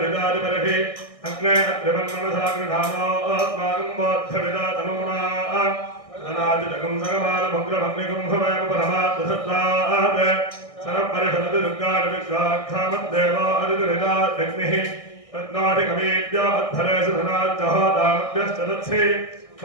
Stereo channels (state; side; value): late; right; 1.6 ms